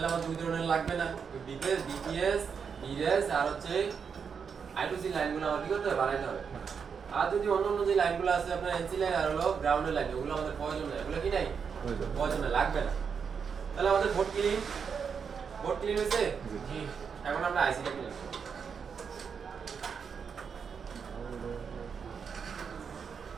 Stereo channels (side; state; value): left; quieter; 6.4 dB